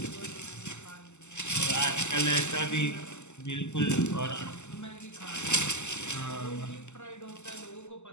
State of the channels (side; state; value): right; late; 0.83 ms